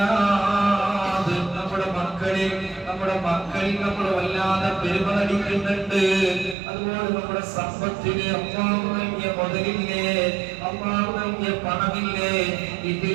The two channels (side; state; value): left; drops out; at 6.6 s